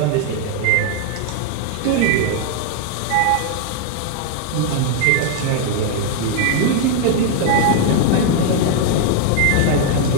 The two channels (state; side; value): different; both; correlation 0.00